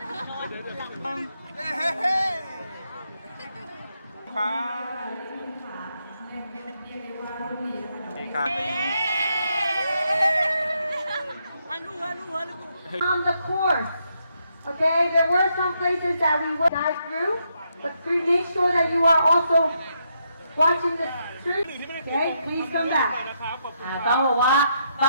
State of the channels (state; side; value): inverted; both; correlation -0.79